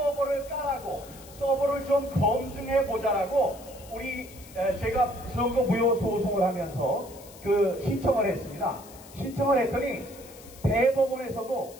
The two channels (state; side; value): noise; left; hiss, 20 dB below the sound